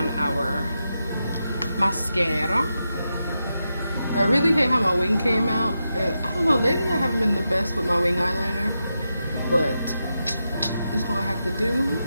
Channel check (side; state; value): both; inverted; correlation -0.88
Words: our mascara. I really hate how my wing came out. And I don't know, lately I haven't been the best with my wing eyeliner, but it's gonna have to do